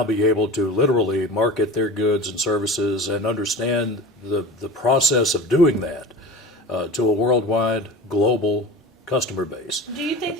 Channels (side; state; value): both; normal; correlation 0.34